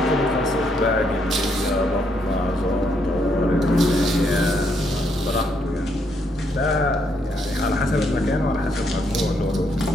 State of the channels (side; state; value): both; normal; correlation 0.74